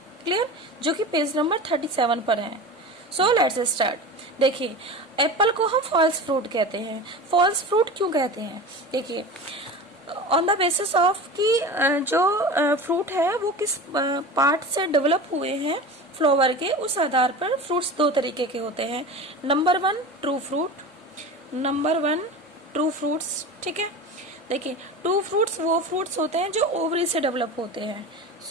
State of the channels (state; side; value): normal; both; correlation 0.31